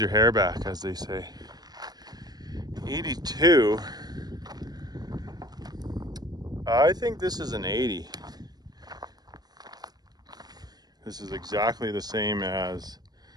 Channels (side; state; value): left; late; 0.19 ms